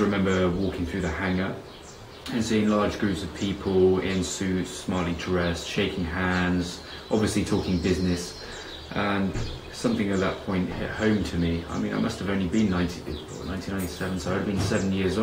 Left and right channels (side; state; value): both; identical; correlation 1.00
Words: walking through the hangar and seeing large groups of people in suits, smartly dressed, shaking hands, obviously talking business. And something at that point hit home to me. I mean, I must have only been 1997, so I'd been 7 years